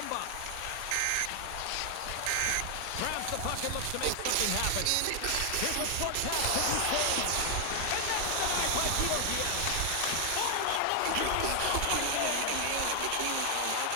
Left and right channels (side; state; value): both; different; correlation 0.00